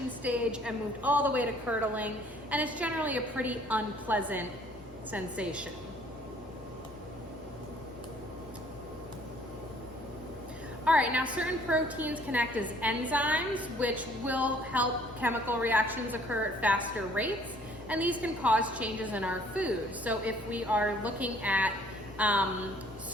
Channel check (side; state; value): both; normal; correlation 0.59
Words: stage and moved all the way to curdling, and it's generally a pretty unpleasant sensation. All right, now certain proteins can act as enzymes, which will help chemical reactions occur at faster rates, and these can cause changes in our food. So if we are looking at